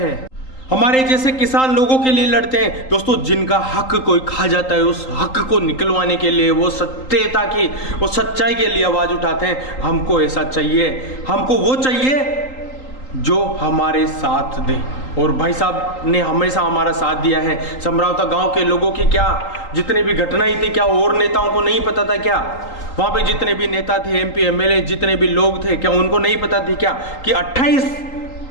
हमारे जैसे किसान लोगों के लिए लड़ते हैं दोस्तों, जिनका हक कोई खा जाता है उस हक को निकलवाने के लिए, वो सत्यता की, वो सच्चाई के लिए आवाज उठाते हैं। हमको ऐसा चाहिए, हमको वो चाहिए जो हमारे साथ दे। और भाई साहब ने हमेशा हमारा साथ दिया है। समरावता गांव के लोगों की क्या जितनी भी घटनाएं थी, क्या और नेताओं को नहीं पता था क्या? वहां पे जितने भी नेता थे, MP MLA जितने भी लोग थे, क्या उनको नहीं पता थी क्या कि 28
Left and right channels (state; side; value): late; right; 3.8 ms